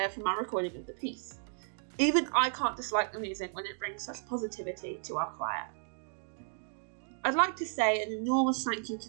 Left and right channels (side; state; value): left; silent; digital silence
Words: from our recording of the piece. Even I can't dislike the music when it brings such positivity to our choir. I'd like to say an enormous thank you to